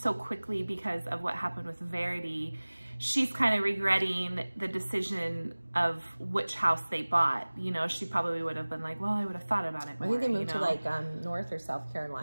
quickly because of what happened with Verity. She's kind of regretting the decision of which house they bought. You know, she probably would have been like, well, I would have thought about it more. I think they moved to like North or South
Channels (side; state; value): both; inverted; correlation -1.00